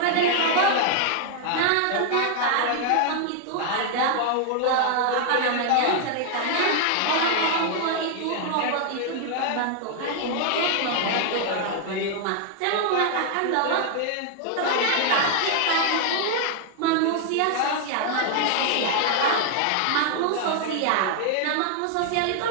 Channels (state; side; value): different; both; correlation 0.00